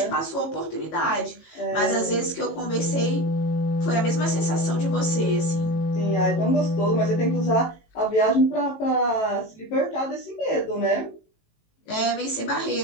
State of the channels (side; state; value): right; late; 19 ms